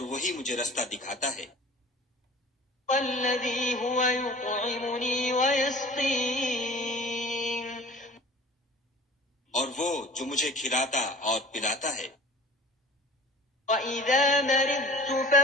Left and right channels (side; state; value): both; normal; correlation 0.42